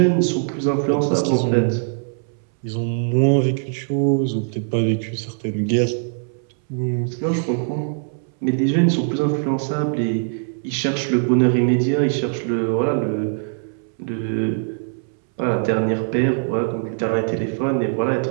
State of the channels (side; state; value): left; silent; 63 dB below the other